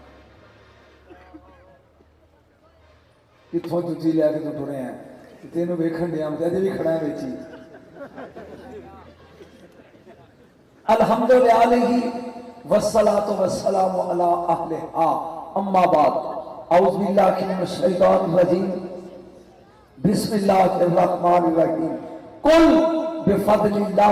इतों जुती लैके तो टुरे हैं तेन वेखन दिया अजे भी खड़ा है बेची। अल्हम्दुलिल्लाह वस्सलातु वस्सलामु अला अहलिहा अम्मा बाद औज़ु बिल्लाहि मिनश शैतानिर रजीम बिस्मिल्लाहिर रहमानिर रहीम कुल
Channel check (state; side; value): identical; both; correlation 1.00